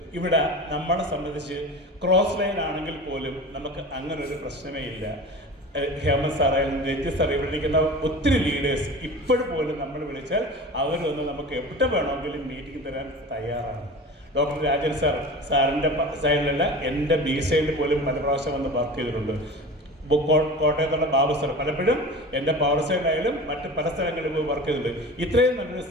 ഇവിടെ നമ്മളെ സംബന്ധിച്ച് ക്രോസ് ലൈൻ ആണെങ്കിൽ പോലും നമുക്ക് അങ്ങനെ ഒരു പ്രശ്നമേ ഇല്ല. ഹേമന്ത് സാറായാലും രഞ്ജിത്ത് സാർ, ഇവിടെ ഇരിക്കുന്ന ഒത്തിരി ലീഡേഴ്സ് ഇപ്പോഴും പോലും നമ്മൾ വിളിച്ചാൽ അവർ വന്ന് നമുക്ക് എവിടെ വേണമെങ്കിലും മീറ്റിംഗ് തരാൻ തയ്യാറാണ്. ഡോക്ടർ രാജൻ സാറിൻ്റെ സൈഡിലല്ല, എൻ്റെ ബി സൈഡിൽ പോലും പല പ്രാവശ്യം വന്ന് വർക്ക് ചെയ്തിട്ടുണ്ട്. കോട്ടയത്തുള്ള ബാബു സാർ പലപ്പോഴും എൻ്റെ പവർ സൈഡിലായാലും മറ്റ് പല സ്ഥലങ്ങളിലും പോയി വർക്ക് ചെയ്തിട്ടുണ്ട്. ഇത്രയും നല്ലൊരു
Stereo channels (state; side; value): normal; both; correlation 0.35